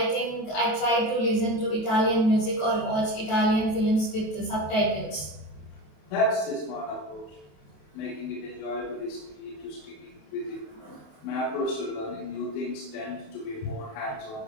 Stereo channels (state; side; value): late; right; 27 ms